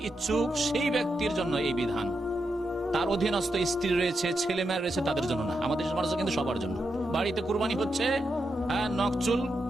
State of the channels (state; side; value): normal; both; correlation 0.85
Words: ইচ্ছুক সেই ব্যক্তির জন্য এই বিধান। তার অধীনস্থ স্ত্রী রয়েছে, ছেলে মেয়ে রয়েছে, তাদের জন্য না। আমাদের সমাজে কিন্তু সবার জন্য। বাড়িতে কুরবানি হচ্ছে, নখ চুল